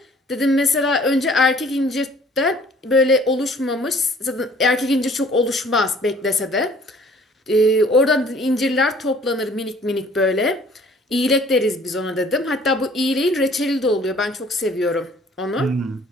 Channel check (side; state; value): both; normal; correlation 0.55